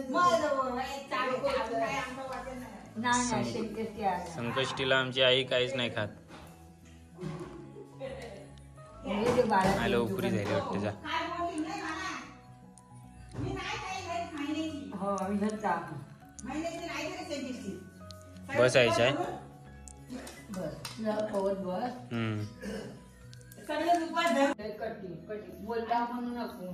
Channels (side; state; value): both; identical; correlation 1.00